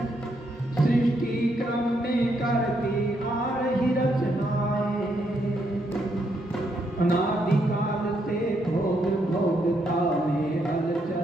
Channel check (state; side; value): normal; both; correlation 0.76